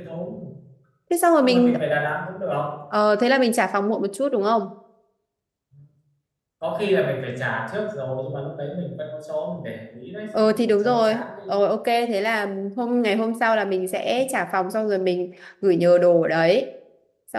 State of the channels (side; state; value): both; identical; correlation 1.00